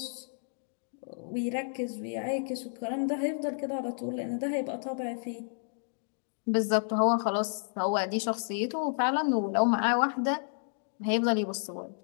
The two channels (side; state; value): right; silent; digital silence